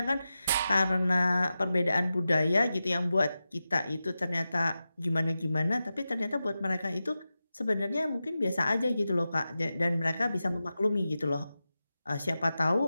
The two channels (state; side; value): inverted; both; correlation -0.92